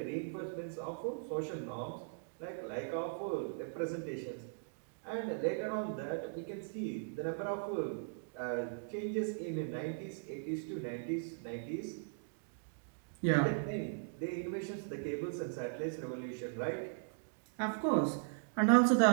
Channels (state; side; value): silent; left; digital silence